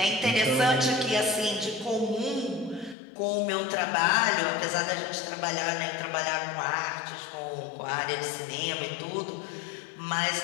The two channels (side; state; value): right; drops out; at 3.0 s